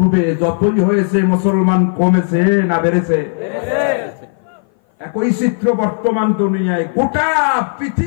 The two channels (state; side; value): silent; right; 59 dB below the other